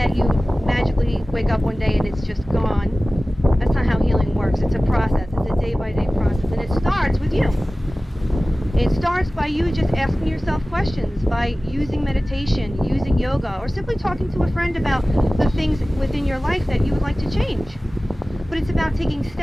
that you magically wake up one day and it's just gone. That's not how healing works. It's a process. It's a day-by-day process. And it starts with you. It starts by you just asking yourself questions, by using meditation, using yoga, or simply talking to a friend about the things within your life that you would like to change. But it's about taking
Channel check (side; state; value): both; normal; correlation 0.97